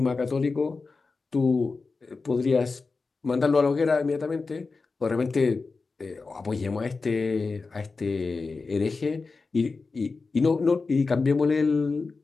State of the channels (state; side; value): quieter; right; 4.1 dB